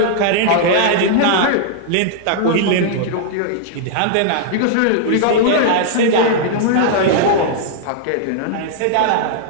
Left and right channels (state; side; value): different; both; correlation -0.01